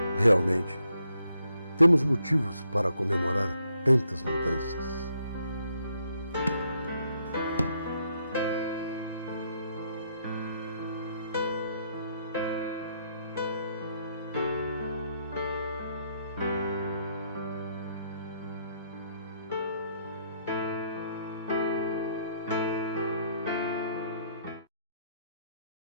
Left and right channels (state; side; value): inverted; both; correlation -0.74